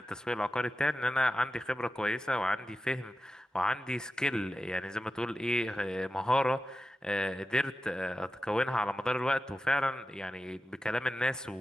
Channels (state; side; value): normal; both; correlation 0.92